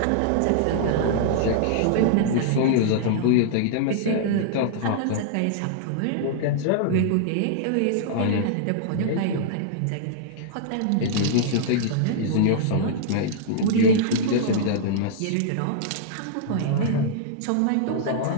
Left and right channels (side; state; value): both; different; correlation -0.02